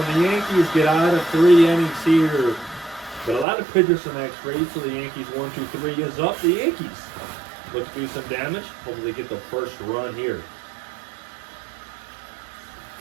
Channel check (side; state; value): left; drops out; at 3.5 s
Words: the Yankees get out of 3 innings here. But a lot of pitchers from that trade, so the Yankees 1-2-3 is up. The Yankees look to do some damage. Hopefully get the first run here.